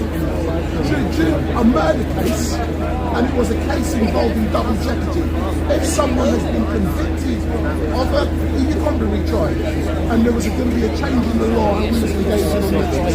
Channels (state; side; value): identical; both; correlation 1.00